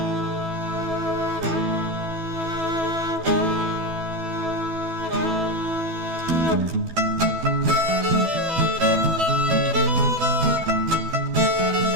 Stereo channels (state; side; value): late; left; 12 ms